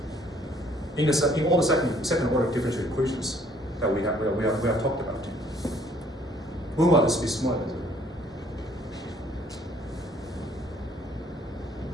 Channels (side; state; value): both; normal; correlation 0.61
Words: In all the second order differential equations that we have talked about, when will this be smaller than 0?